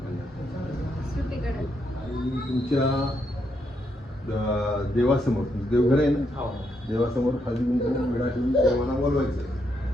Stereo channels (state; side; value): normal; both; correlation 0.78